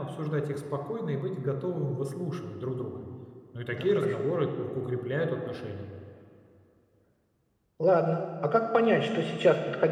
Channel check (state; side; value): identical; both; correlation 1.00